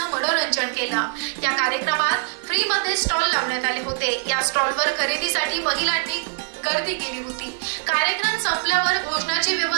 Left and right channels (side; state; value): left; silent; digital silence